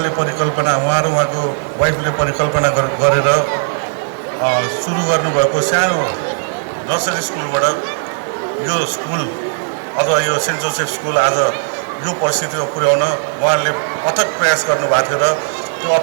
परिकल्पना र उहाँको वाइफले परिकल्पना गरेर सुरु गर्नुभएको सानो नर्सरी स्कुलबाट यो स्कुल अथवा यो सेन्ट जोसेफ स्कुल आज यो परिस्थितिमा पुर्याउन उहाँले अथक प्रयास गर्नुभएको थियो र त्यो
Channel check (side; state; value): left; silent; digital silence